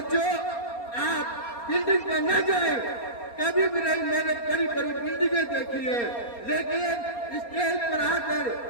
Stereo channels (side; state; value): right; late; 4.3 ms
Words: آپ بلڈنگ پر نہ جائیں، کبھی بھی نہیں، میں نے بڑی بڑی بلڈنگیں دیکھی ہے، لیکن اسٹیج پر آ کر